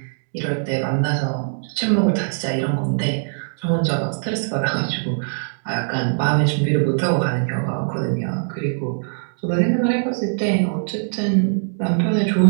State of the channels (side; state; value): left; silent; digital silence